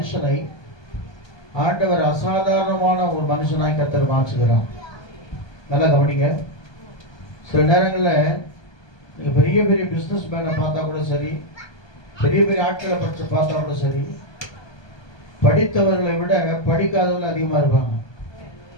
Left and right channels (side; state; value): right; late; 1.2 ms